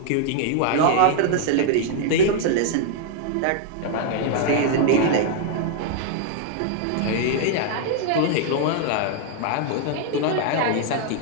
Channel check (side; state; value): both; different; correlation 0.00